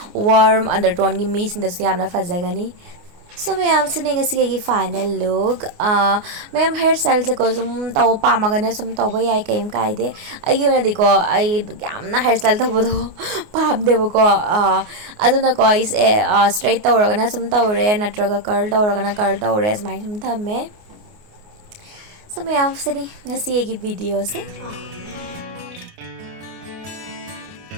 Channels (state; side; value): late; left; 29 ms